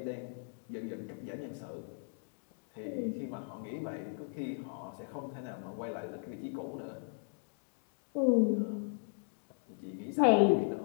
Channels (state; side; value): silent; right; digital silence